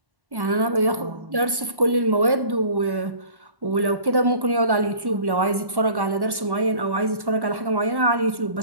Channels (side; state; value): left; late; 1.1 ms